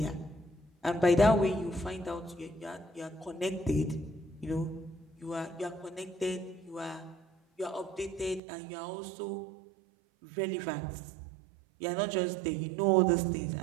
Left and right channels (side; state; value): left; drops out; at 8.4 s